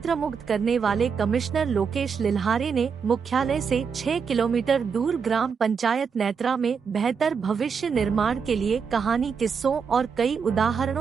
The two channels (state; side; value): quieter; left; 6.1 dB